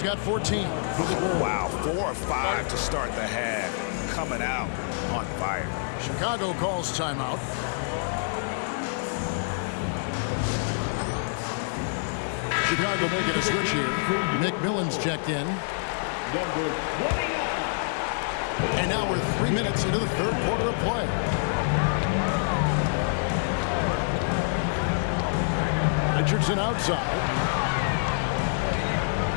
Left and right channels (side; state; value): right; silent; 57 dB below the other